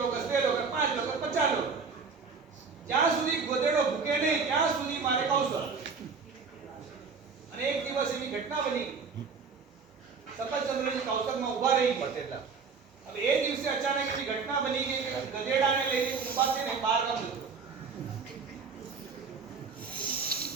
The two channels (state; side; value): quieter; left; 5.2 dB